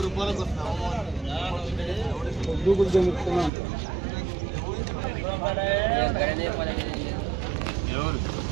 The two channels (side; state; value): left; drops out; at 3.5 s